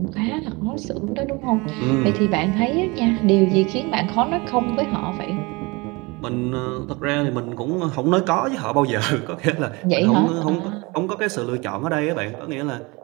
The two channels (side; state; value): left; quieter; 25.8 dB